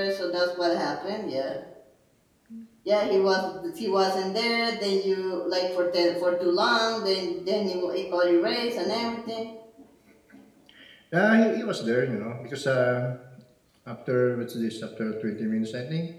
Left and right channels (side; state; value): both; identical; correlation 1.00